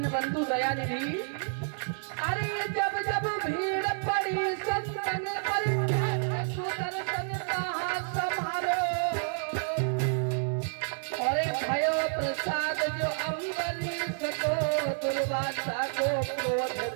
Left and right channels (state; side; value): silent; left; digital silence